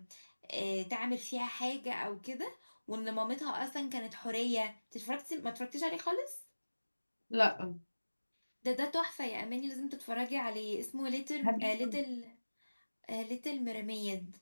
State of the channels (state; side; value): inverted; both; correlation -1.00